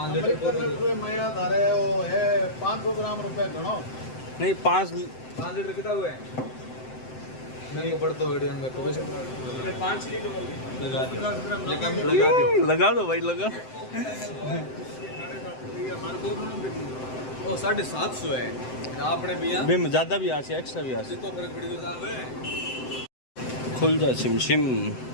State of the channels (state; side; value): late; right; 7.8 ms